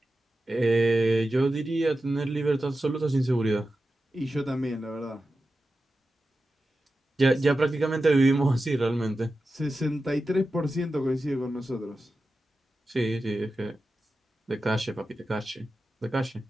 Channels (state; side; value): normal; both; correlation 0.92